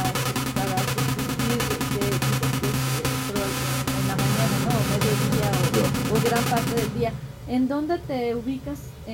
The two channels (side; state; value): both; identical; correlation 1.00